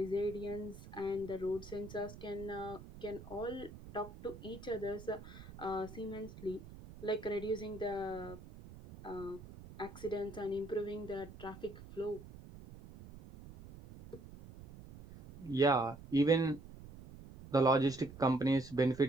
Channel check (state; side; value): noise; right; rumble, 16 dB below the sound